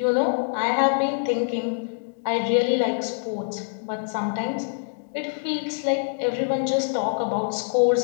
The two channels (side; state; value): right; silent; digital silence